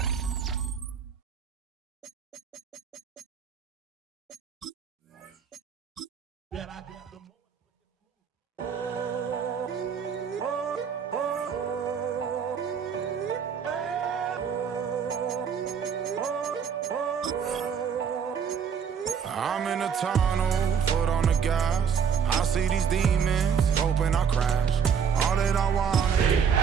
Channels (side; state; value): left; quieter; 7.1 dB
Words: I'm in a tunnel, foot on the gas. I see these demons, hoping I crash. All that I want is